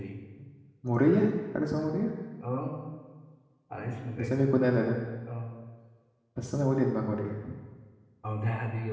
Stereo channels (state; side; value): identical; both; correlation 1.00